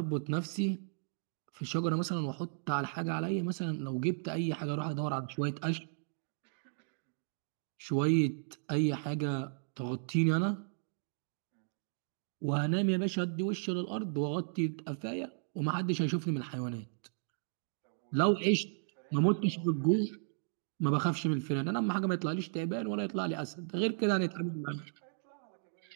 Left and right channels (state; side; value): silent; left; digital silence